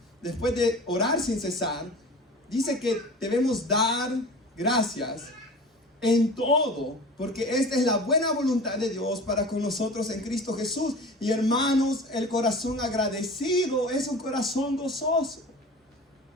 después de orar sin cesar, dice que debemos dar gracias en todo, porque esta es la buena voluntad de Dios para con nosotros en Cristo Jesús. Y hermanos, el corazón agradecido es un corazón gozoso.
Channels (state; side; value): normal; both; correlation 0.38